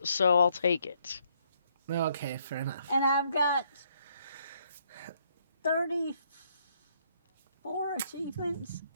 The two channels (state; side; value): inverted; both; correlation -0.70